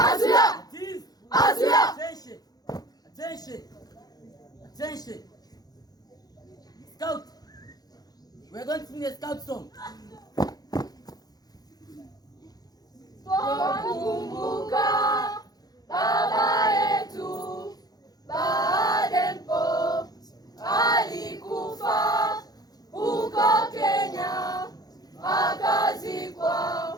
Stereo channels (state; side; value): late; right; 0.19 ms